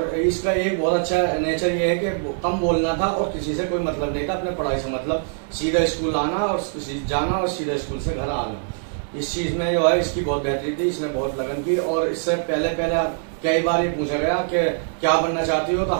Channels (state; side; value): silent; left; 64 dB below the other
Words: इसका एक बहुत अच्छा नेचर ये है कि कम बोलना था और किसी से कोई मतलब नहीं था, अपने पढ़ाई से मतलब, सीधा स्कूल आना और जाना और सीधा स्कूल से घर आना। इस चीज़ में जो है इसकी बहुत बेहतरी थी, इसने बहुत लगन की। और इससे पहले कई बार ये पूछा गया कि क्या बनना चाहती हो, तो